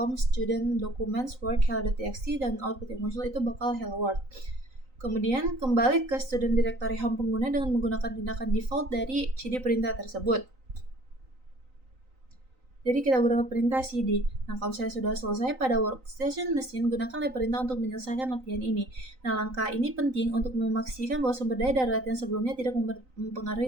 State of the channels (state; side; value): late; left; 3.9 ms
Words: student documents work hello.txt dan output yang muncul itu bakal hello world. Kemudian kembali ke student directory home pengguna dengan menggunakan tindakan default dari cd perintah tersebut. Jadi kita gunakan perintah cd. Nah, kalau saya sudah selesai pada workstation mesin, gunakanlah perintah untuk menyelesaikan latihan ini. Nah, langkah ini penting untuk memastikan bahwa sumber daya dari latihan sebelumnya tidak mempengaruhi